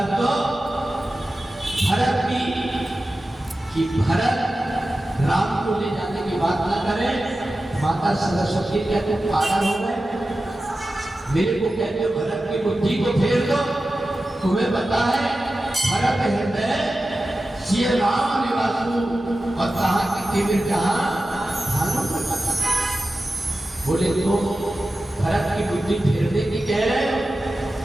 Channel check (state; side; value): normal; both; correlation 0.94